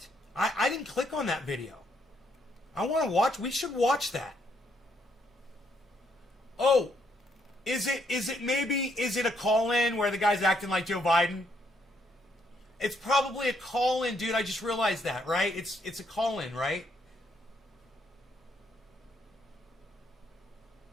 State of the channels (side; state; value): both; normal; correlation 0.73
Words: I didn't click on that video. I want to watch. We should watch that. Oh, is it a call-in where the guy's acting like Joe Biden? It's probably a call-in, dude. I just realized that, right? It's a call-in, right?